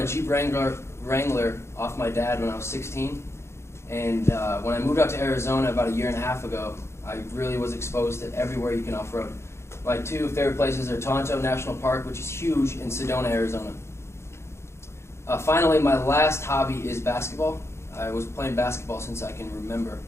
Jeep Wrangler off my dad when I was 16, and when I moved out to Arizona about a year and a half ago, I really was exposed to everywhere you can off-road. My two favorite places are Tonto National Park, which is huge, and Sedona, Arizona. Finally, my last hobby is basketball. I was playing basketball since I can remember.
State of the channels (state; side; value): late; right; 0.13 ms